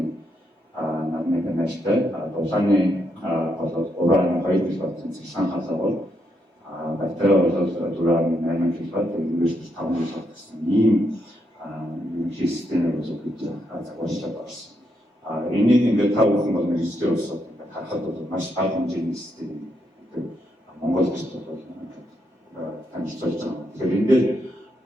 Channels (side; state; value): both; normal; correlation 0.79